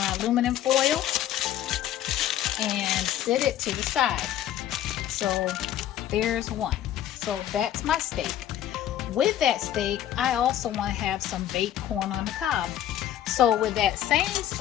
aluminum foil and set it to the side. So there's one. So that's my steak. With that steak, I also want to have some baked corn on the cob. So with that same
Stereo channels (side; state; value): right; quieter; 11.7 dB